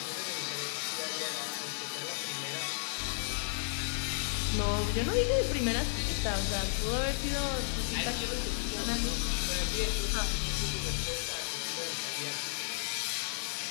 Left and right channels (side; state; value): right; silent; digital silence